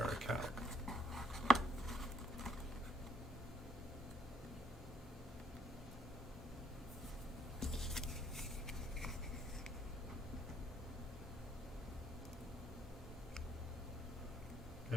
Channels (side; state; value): both; normal; correlation 0.68